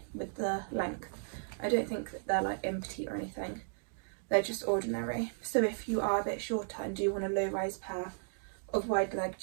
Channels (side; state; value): left; silent; digital silence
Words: with the length. I don't think that they're like in petite or anything. They're just ordinary. So if you are a bit shorter and do want a low rise pair of wide leg